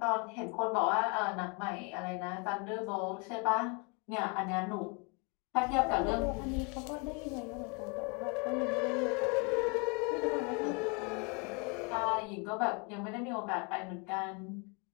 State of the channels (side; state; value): right; quieter; 32.2 dB